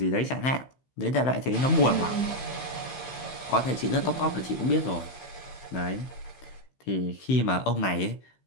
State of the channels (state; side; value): late; right; 15 ms